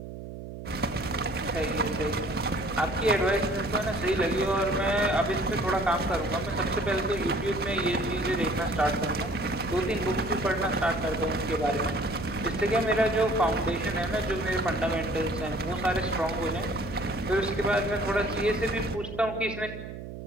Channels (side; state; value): right; noise; hum, 10 dB below the sound